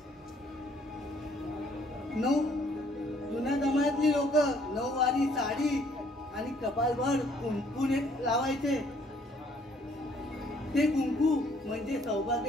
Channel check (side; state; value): both; normal; correlation 0.63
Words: जुन्या जमान्यातली लोक नऊवारी साडी आणि कपालभर कुंकूने लावायचे. ते कुंकू म्हणजे